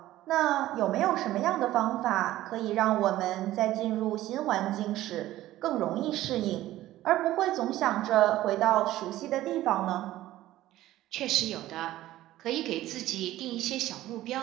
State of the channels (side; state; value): left; quieter; 15.1 dB